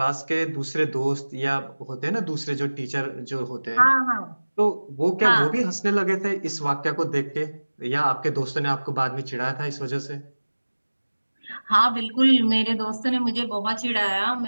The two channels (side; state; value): both; inverted; correlation -1.00